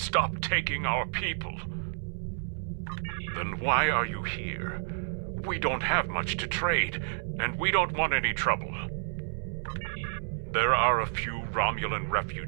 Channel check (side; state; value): left; silent; 58 dB below the other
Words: taking our people. Then why are you here? We don't have much to trade, and we don't want any trouble. There are a few Romulan